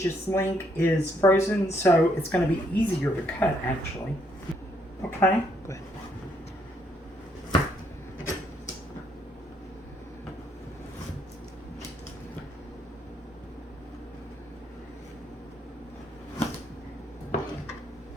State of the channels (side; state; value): both; normal; correlation 0.72